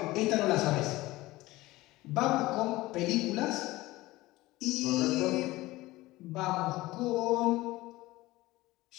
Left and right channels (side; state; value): right; quieter; 18.7 dB